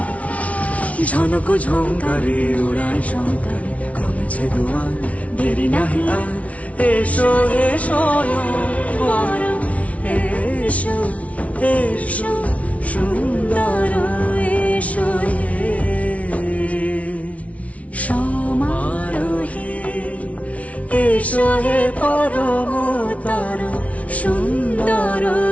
ঝনক ঝঙ্কারে উড়ায় শঙ্কারে কমেছে দুয়ার দেরি নাহি আর এসো এসো পরম এসো এসো সুন্দর এসো হে সমারোহে এসো হে পরমতর সুন্দর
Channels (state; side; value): late; right; 0.066 ms